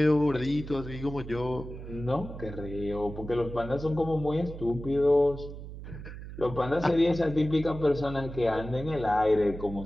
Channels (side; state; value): right; noise; hum, 11 dB below the sound